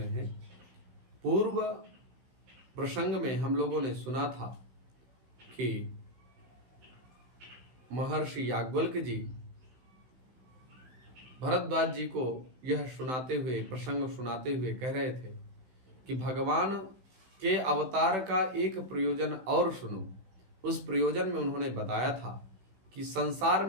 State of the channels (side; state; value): left; late; 16 ms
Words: हैं। पूर्व प्रसंग में हम लोगों ने सुना था कि महर्षि याज्ञवल्क्य जी भरद्वाज जी को यह सुनाते हुए प्रसंग सुनाते हुए कह रहे थे कि भगवान के अवतार का एक प्रयोजन और सुनो। उस प्रयोजन में उन्होंने बताया था कि संसार